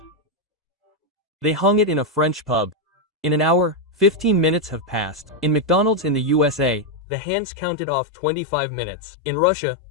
They hung it in a French pub. In an hour, 15 minutes have passed. In McDonald's in the USA, the hands counted off 25 minutes. In Russia,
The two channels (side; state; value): right; drops out; at 7.0 s